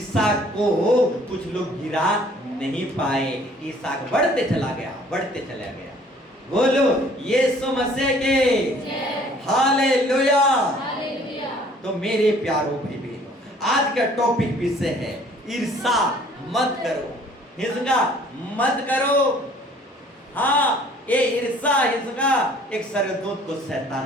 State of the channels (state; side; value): normal; both; correlation 0.56